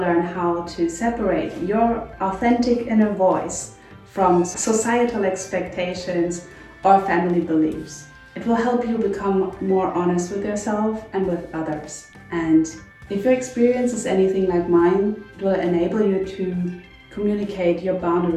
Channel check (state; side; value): identical; both; correlation 1.00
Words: how to separate your authentic inner voice from societal expectations or family beliefs. It will help you become more honest with yourself and with others. And if your experience is anything like mine, it will enable you to communicate your